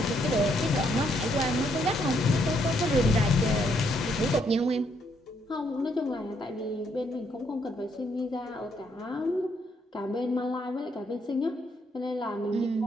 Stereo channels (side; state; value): both; normal; correlation 0.72